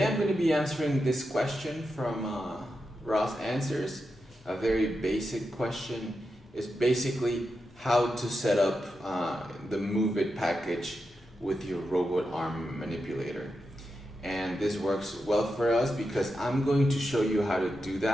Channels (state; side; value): normal; both; correlation 0.88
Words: I'm going to be answering this question from ROS Answers. A very basic question. Is basically how to set up the MoveIt package with your robot arm manipulator. And this works well for us because I'm going to show you how to do